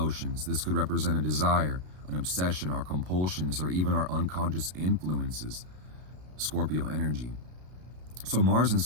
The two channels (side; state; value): left; late; 33 ms